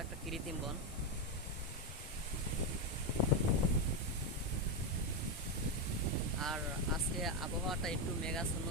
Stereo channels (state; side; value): normal; both; correlation 0.07